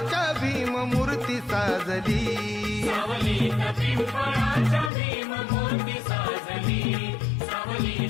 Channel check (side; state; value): right; drops out; at 4.9 s